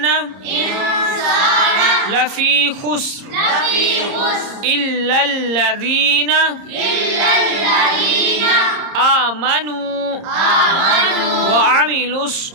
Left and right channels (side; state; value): left; late; 30 ms